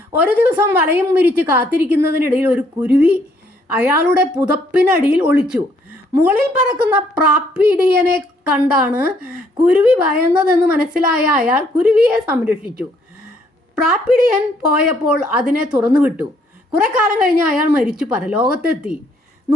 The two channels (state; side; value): normal; both; correlation 0.67